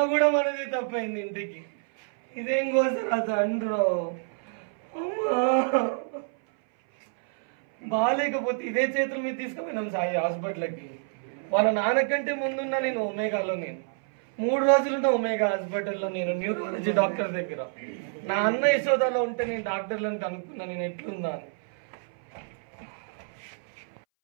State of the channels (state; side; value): silent; left; 60 dB below the other